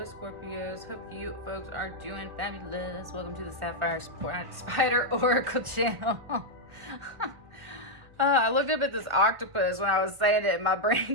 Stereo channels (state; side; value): late; left; 1.7 ms